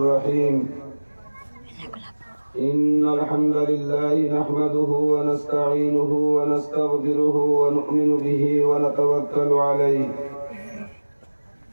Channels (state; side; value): inverted; both; correlation -1.00